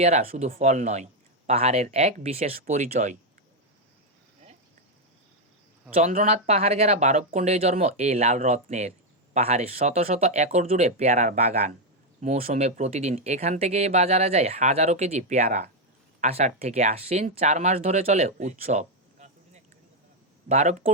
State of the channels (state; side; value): normal; both; correlation 0.02